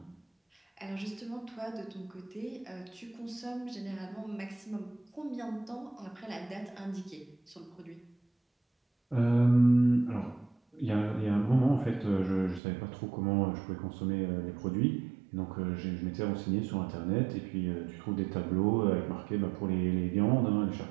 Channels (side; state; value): left; drops out; at 12.6 s